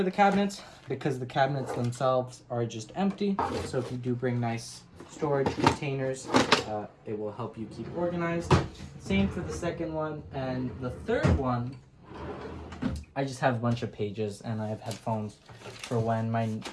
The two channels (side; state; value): both; identical; correlation 1.00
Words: the cabinets because the cabinets themselves are just empty. So if you do bring nice storage containers, it will help you keep organized. Same for the second one. And the third one, I just have a bunch of pages and I have headphones for when my